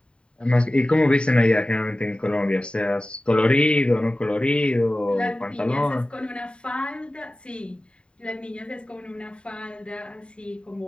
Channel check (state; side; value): late; right; 0.053 ms